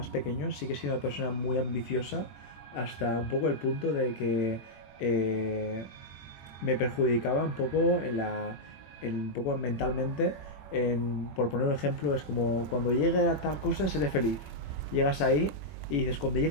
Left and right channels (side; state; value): right; late; 21 ms